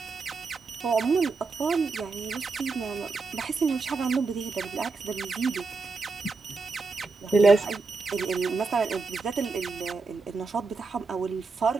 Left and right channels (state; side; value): quieter; left; 4.2 dB